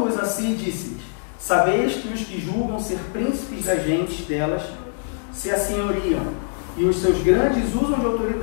a si, disse-lhes: sabeis que os que julgam ser príncipes das gentes delas se assenhoriam, e os seus grandes usam de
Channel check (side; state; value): right; silent; digital silence